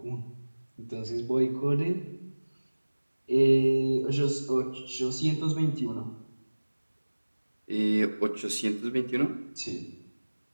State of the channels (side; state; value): both; inverted; correlation -1.00